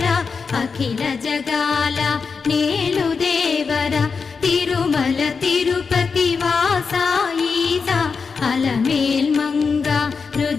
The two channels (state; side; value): quieter; right; 5.2 dB